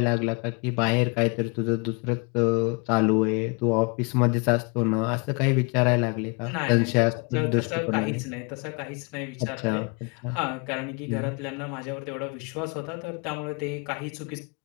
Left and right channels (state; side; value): quieter; right; 32.9 dB